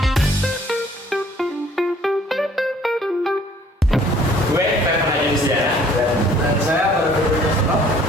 Gue Stefan Ajunisya Dan saya baru berbicara.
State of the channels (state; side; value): normal; both; correlation 0.57